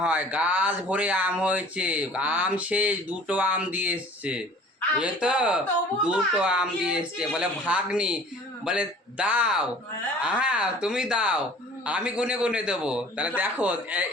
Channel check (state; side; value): normal; both; correlation 0.48